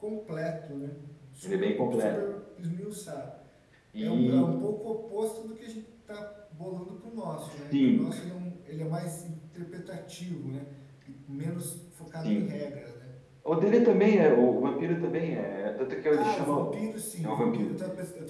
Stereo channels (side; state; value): both; identical; correlation 1.00